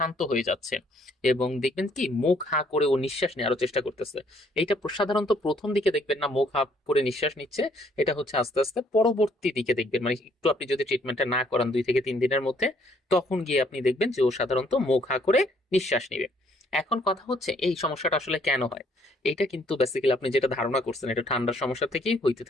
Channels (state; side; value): normal; both; correlation 0.65